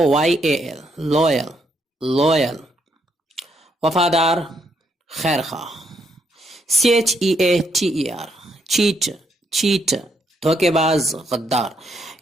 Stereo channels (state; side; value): normal; both; correlation 0.74